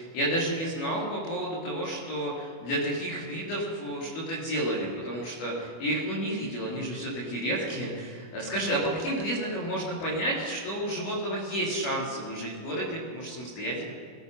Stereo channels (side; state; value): right; late; 25 ms